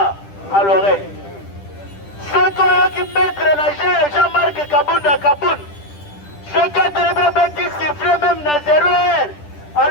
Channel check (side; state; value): right; late; 10 ms